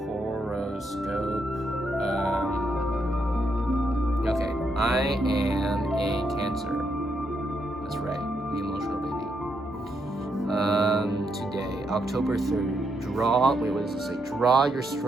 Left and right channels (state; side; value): normal; both; correlation 0.79